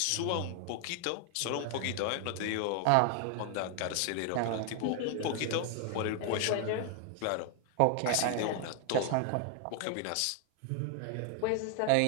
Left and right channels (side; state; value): both; different; correlation 0.00